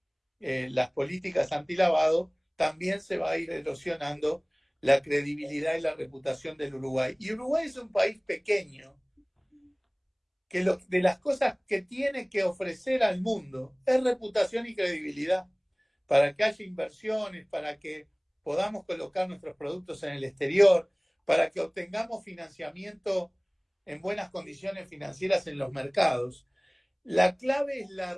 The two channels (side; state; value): both; identical; correlation 1.00